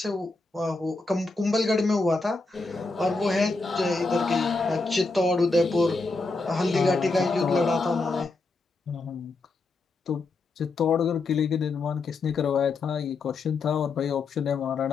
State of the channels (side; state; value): right; quieter; 3.6 dB